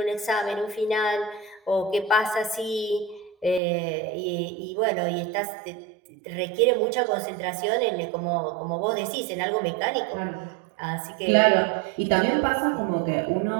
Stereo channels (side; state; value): left; drops out; at 3.6 s